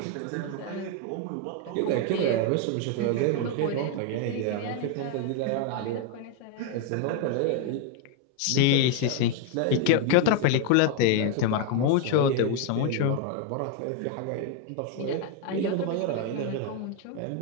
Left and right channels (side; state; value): both; different; correlation 0.01